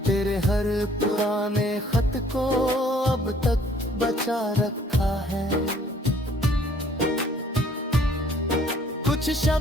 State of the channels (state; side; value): normal; both; correlation 0.59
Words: तेरे हर पुराने खत को अब तक बचा रखा है। कुछ